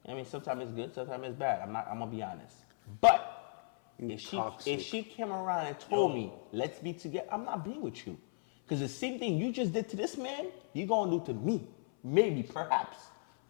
I mean, sometimes it's good, sometimes it's bad. I'm gonna be honest. But if she came around and told me, let's be together, I'm not being with you. Because the same thing you just did to this man, you gonna do to me. Maybe, perhaps.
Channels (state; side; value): silent; right; 54 dB below the other